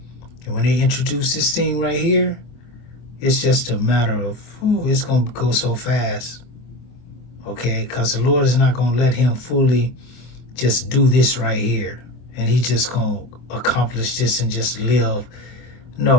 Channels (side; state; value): right; late; 24 ms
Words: And when they introduce this thing right here, it's just a matter of, it's gonna go so fast. Okay, because the Lord is not gonna let him fully just do this right here, and he just gonna accomplish this and just live.